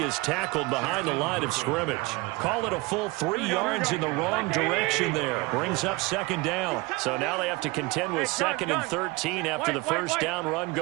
tackled behind the line of scrimmage. Call it a full 3 yards in the wrong direction there. Brings up 2nd down. So now they have to contend with 2nd and 13 after the 1st down run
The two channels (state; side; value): quieter; left; 23.6 dB